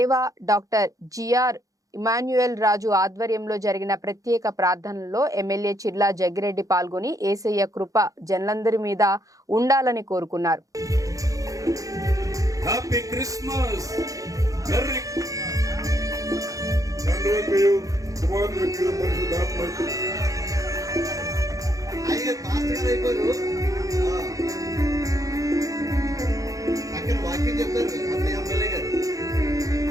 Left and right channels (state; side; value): late; left; 0.17 ms